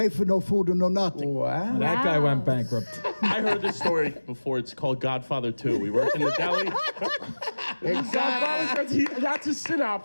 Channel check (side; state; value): both; inverted; correlation -1.00